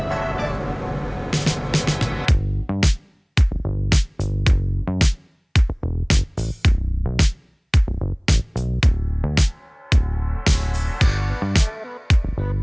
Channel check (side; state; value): both; identical; correlation 1.00